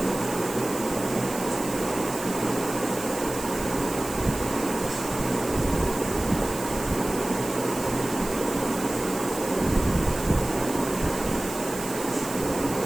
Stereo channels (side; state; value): right; noise; hiss, 10 dB below the sound